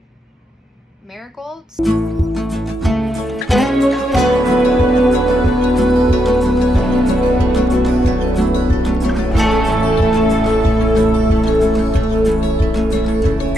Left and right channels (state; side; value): normal; both; correlation 0.81